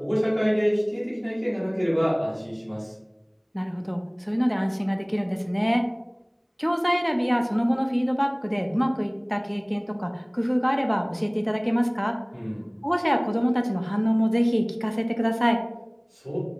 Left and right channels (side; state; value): both; identical; correlation 1.00